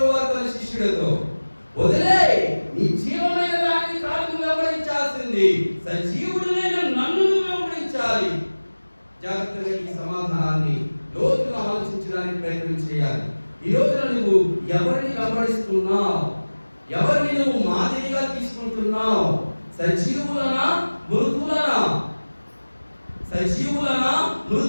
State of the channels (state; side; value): inverted; both; correlation -1.00